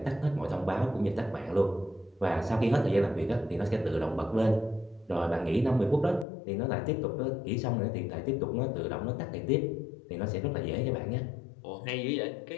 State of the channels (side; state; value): right; drops out; at 6.2 s